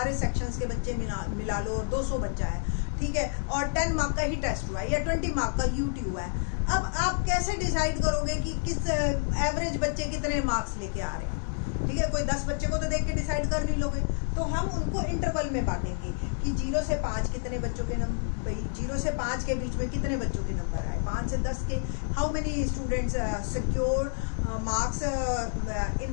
सेक्शंस के बच्चे मिला लो और 200 बच्चा है, ठीक है, और 10 मार्क का ही टेस्ट हुआ है या 20 मार्क का यूटी हुआ है। अब आप कैसे डिसाइड करोगे कि किस एवरेज बच्चे कितने मार्क्स लेके आ रहे हैं? ठीक है, कोई 10 बच्चे को तो देख के डिसाइड कर नहीं लोगे, तो हम उनको इंटरवल में बांटेंगे कि 0 से 5 कितने बच्चों के नंबर, 0 से 5 के बीच में कितने बच्चों के नंबर आए, 5 से 10 के how many students secure marks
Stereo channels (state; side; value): silent; right; 59 dB below the other